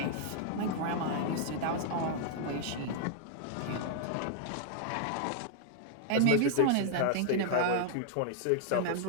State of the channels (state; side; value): different; both; correlation -0.01